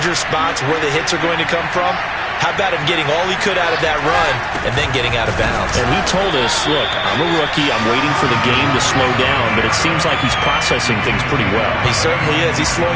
spots where the hits are going to come from. How about him getting all he could out of that run and then getting out of bounds? And he told us, look, I'm a rookie. I'm waiting for the game to slow down, but it seems like he's processing things pretty well. He certainly is. He's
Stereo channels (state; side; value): identical; both; correlation 1.00